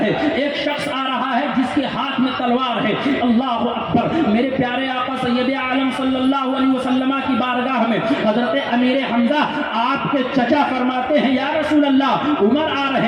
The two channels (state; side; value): identical; both; correlation 1.00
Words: ہے, ایک شخص آ رہا ہے جس کے ہاتھ میں تلوار ہے. اللہ اکبر. میرے پیارے آقا سید عالم صلی اللہ علیہ وسلم کی بارگاہ میں حضرت امیر حمزہ آپ کے چچا فرماتے ہیں یا رسول اللہ, عمر آ